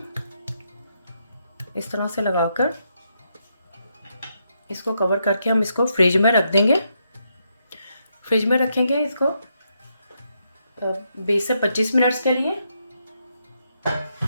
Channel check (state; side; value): inverted; both; correlation -0.80